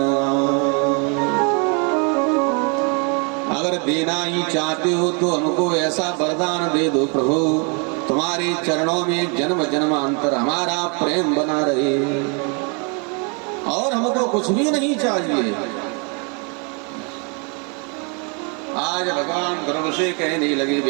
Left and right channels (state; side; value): quieter; left; 35.2 dB